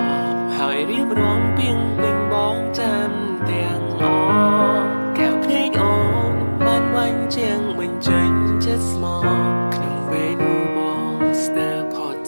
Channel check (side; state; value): both; inverted; correlation -1.00